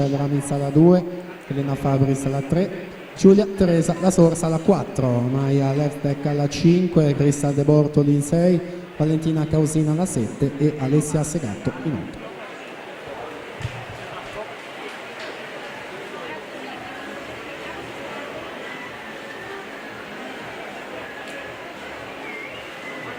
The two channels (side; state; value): both; identical; correlation 1.00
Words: Ramizza alla 2, Elena Fabris alla 3, Giulia Teresa La Sorsa alla 4, Maya Leftek alla 5, Cristal De Bortoli in 6, Valentina Causina alla 7 e Alessia Segatto in 8.